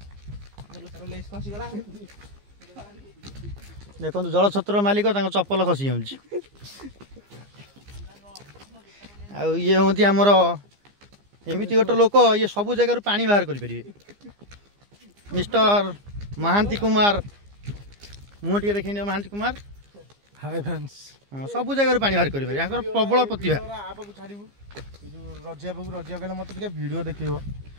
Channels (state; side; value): late; left; 15 ms